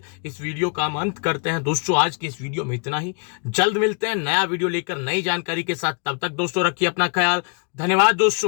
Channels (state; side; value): quieter; right; 37.9 dB